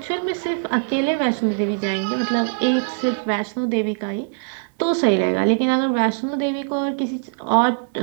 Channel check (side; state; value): left; silent; digital silence